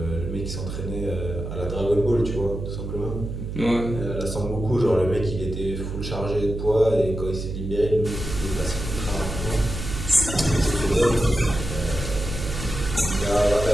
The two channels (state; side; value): noise; right; hum, 6 dB below the sound